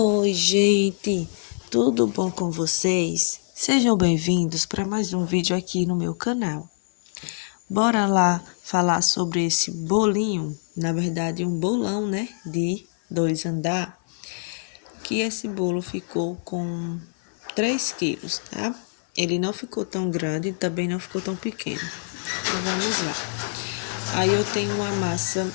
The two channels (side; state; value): right; silent; 56 dB below the other